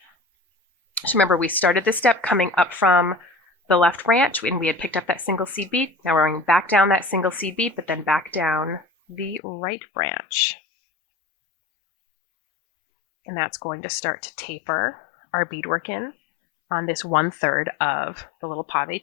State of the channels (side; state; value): right; drops out; at 9.4 s